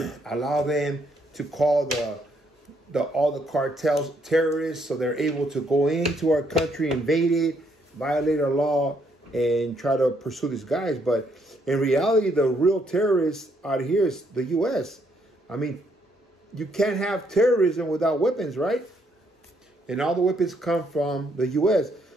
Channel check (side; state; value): both; normal; correlation 0.72